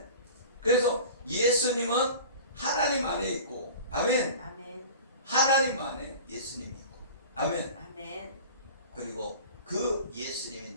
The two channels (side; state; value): both; inverted; correlation -0.39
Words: 그래서 예수님은 하나님 안에 있고, 아멘. 아멘. 하나님 안에 예수님이 있고, 아멘. 아멘. 그리고 그 예수님이